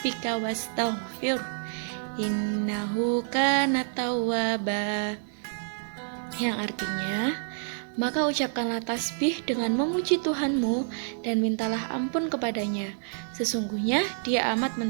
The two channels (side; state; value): left; silent; 57 dB below the other